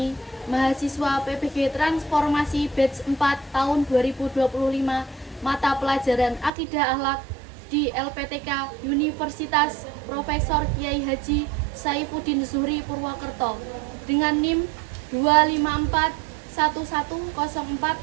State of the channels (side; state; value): left; drops out; at 6.5 s